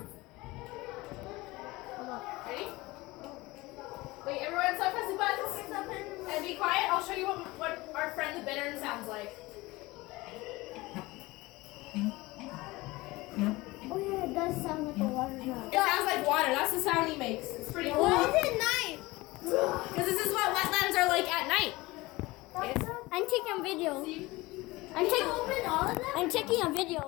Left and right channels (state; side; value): quieter; right; 21.0 dB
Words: Hold on. Ready? Wait, everyone stop pressing buttons. And be quiet. I'll show you what our friend the bittern sounds like. Oh yeah, it does sound like a water drop. It sounds like water. That's the sound he makes. It's pretty cool. Why is it night? Because this is what wetlands are like at night. I'm taking a video. See? Open all of them? I'm taking a